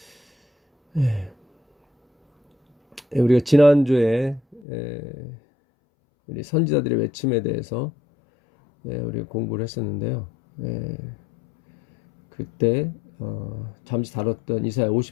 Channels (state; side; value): drops out; right; at 4.7 s